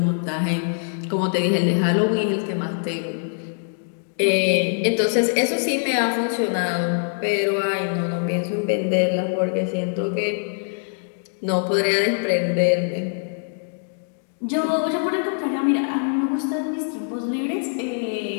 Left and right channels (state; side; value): silent; right; 62 dB below the other